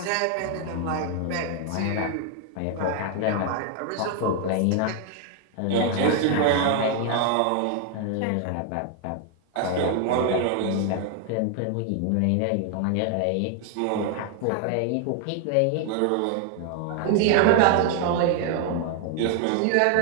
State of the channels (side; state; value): both; different; correlation 0.00